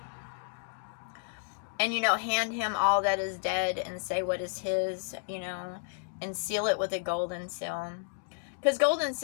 And, hand him all that is dead and say what is his, and seal it with a golden seal. Because golden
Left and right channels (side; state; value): right; silent; digital silence